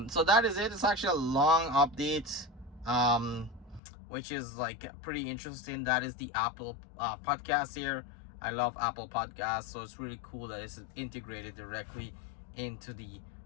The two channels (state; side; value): drops out; right; at 3.8 s